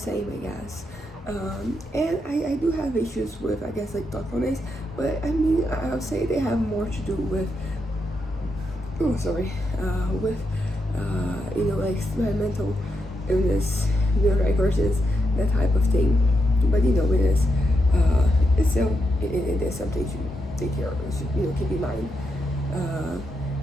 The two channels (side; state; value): both; normal; correlation 0.83